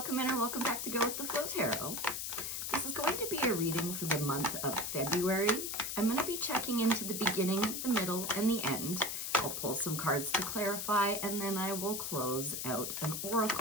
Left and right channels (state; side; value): noise; left; hiss, 3 dB below the sound